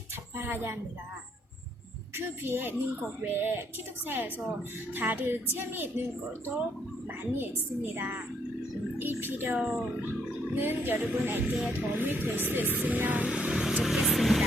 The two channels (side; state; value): both; normal; correlation 0.71